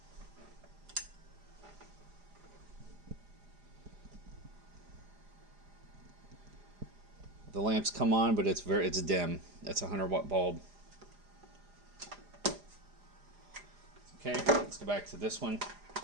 The lamps come on, but it's dim. That's a 100-watt bulb. Okay, let's go back to this one.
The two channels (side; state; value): left; late; 4.9 ms